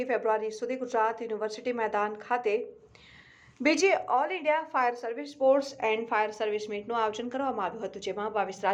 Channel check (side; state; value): both; identical; correlation 1.00